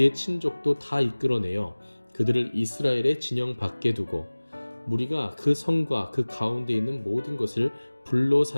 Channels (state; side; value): inverted; both; correlation -1.00